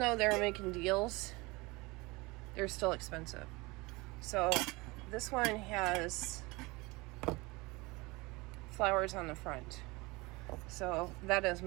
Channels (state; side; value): quieter; left; 24.0 dB